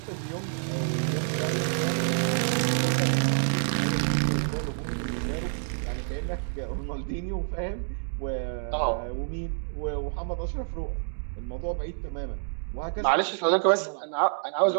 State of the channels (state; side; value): silent; left; digital silence